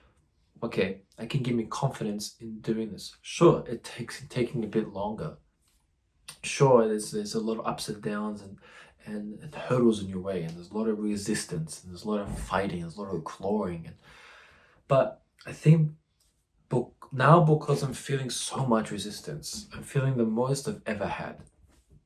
okay, I can give me confidence in doing this. Sure, it takes taking a bit longer. Sure, there's a lot of ups and downs and hurdles in your way, and there's a lot of resistance, and there's a lot of fighting, there's a lot of clawing. But I think now, because I'm feeling so much resistance, I'm feeling the most I've ever had.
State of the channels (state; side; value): identical; both; correlation 1.00